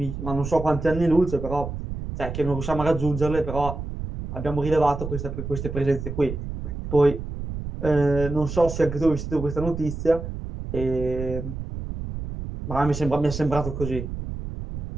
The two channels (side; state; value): right; noise; rumble, 7 dB below the sound